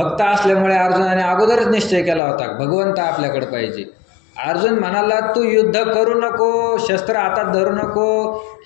असल्यामुळे अर्जुनाने अगोदरच निश्चय केला होता, भगवंत आपल्याकडे पाहिजे. अर्जुन म्हणाला, तू युद्ध करू नको, शस्त्र हातात धरू नको,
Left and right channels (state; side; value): drops out; right; at 2.2 s